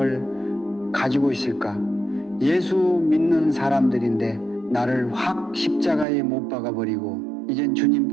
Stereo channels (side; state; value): left; drops out; at 6.1 s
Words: 가지고 있을까? 예수 믿는 사람들인데 나를 확 십자가에 못 박아버리고 이젠 주님